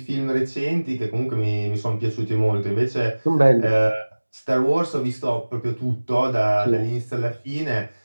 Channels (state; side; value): inverted; both; correlation -1.00